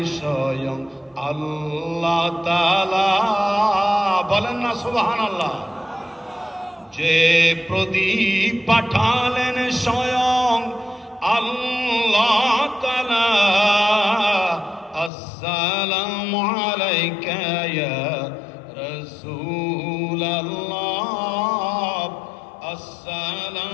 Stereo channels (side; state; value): right; drops out; at 15.1 s